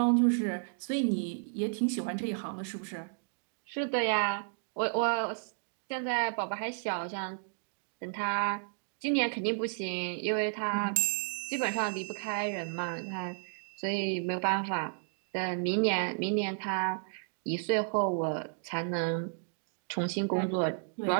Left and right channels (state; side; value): silent; left; digital silence